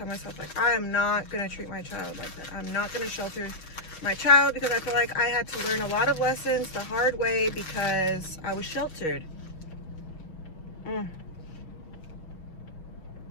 myself, like, I am not going to treat my child like that. I'm not going to shelter my child because I feel like I had to learn a lot of lessons the hard way because I was sheltered.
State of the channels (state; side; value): late; right; 6.3 ms